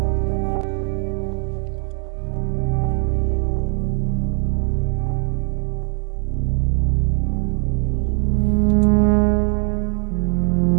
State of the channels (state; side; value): quieter; left; 39.2 dB